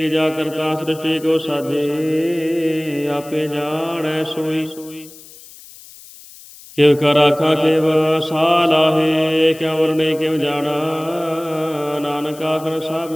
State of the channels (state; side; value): noise; left; hiss, 20 dB below the sound